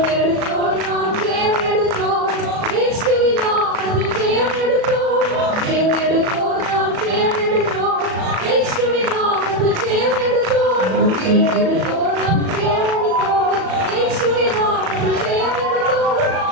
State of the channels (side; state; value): left; late; 37 ms